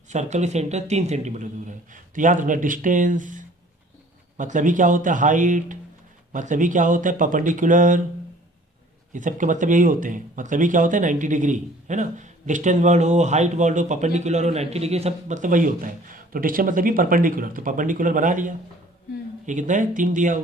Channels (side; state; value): both; normal; correlation 0.52